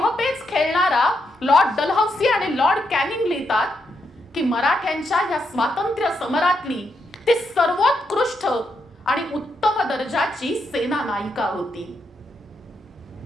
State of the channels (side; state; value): both; normal; correlation 0.80